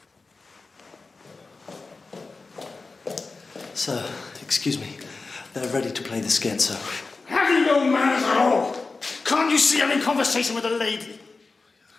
Sir, excuse me. They're ready to play the scherzo. Have you no manners at all? Can't you see I'm in conversation with a lady?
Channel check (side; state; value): right; quieter; 3.9 dB